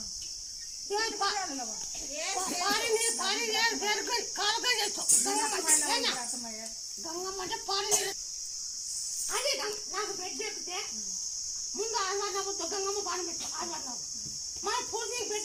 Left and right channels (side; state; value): both; identical; correlation 1.00